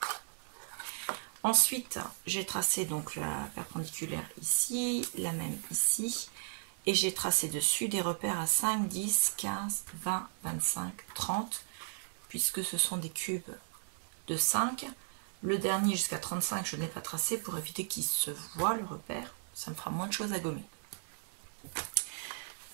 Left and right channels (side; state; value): left; silent; digital silence